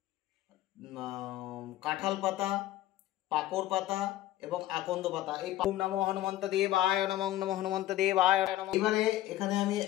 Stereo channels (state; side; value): quieter; right; 14.4 dB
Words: কাঁঠাল পাতা, পাকড় পাতা এবং আকন্দ পাতা। এই ওম নমো হনুমন্ত দেবায় নমো নমো হনুমন্ত দেবায়। এবারে এখানে আমি